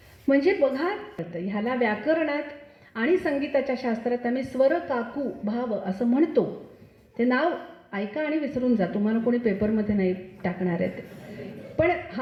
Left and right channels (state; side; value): identical; both; correlation 1.00